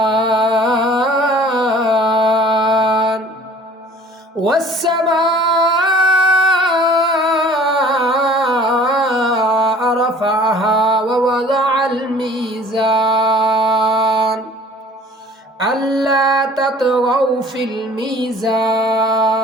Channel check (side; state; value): both; normal; correlation 0.50